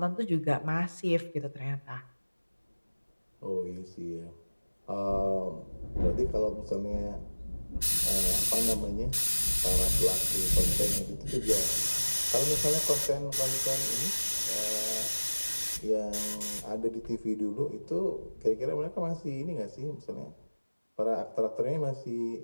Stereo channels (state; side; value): inverted; both; correlation -1.00